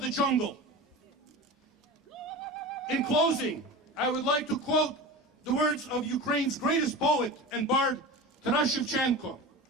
the jungle. In closing, I would like to quote the words of Ukraine's greatest poet and bard, Taras Shevchenko.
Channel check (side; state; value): both; normal; correlation 0.30